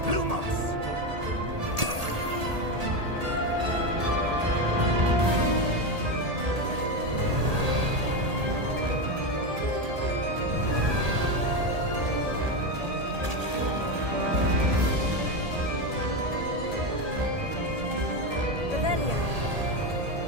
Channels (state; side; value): late; left; 1.8 ms